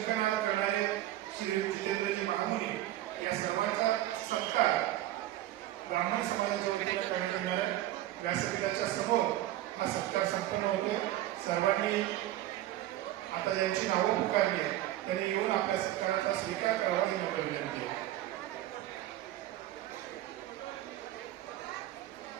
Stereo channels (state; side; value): quieter; left; 14.4 dB